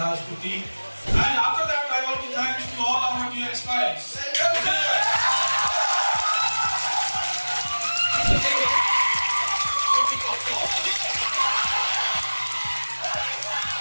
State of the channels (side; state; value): both; inverted; correlation -1.00